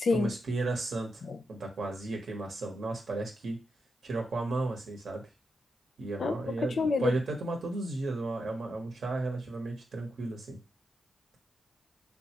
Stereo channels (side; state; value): both; normal; correlation 0.85